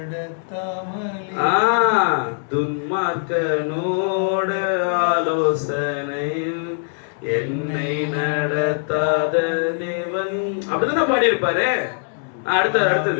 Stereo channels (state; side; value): silent; right; digital silence